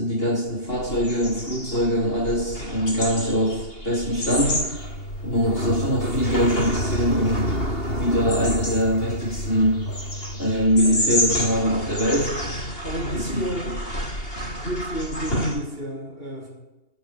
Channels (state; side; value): late; right; 2.8 ms